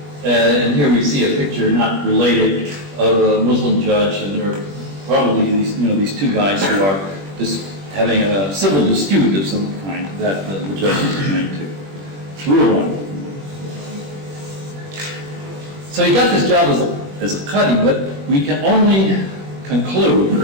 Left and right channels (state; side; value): late; left; 21 ms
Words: and here we see a picture, not related, of a Muslim judge, and there are probably these two guys who are just having a civil dispute of some kind that the judge is trying to rule on. So he got this job as a Qadi, but we can only conclude